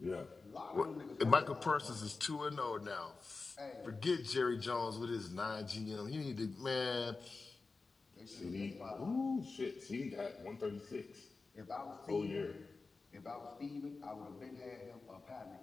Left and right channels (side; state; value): right; quieter; 4.0 dB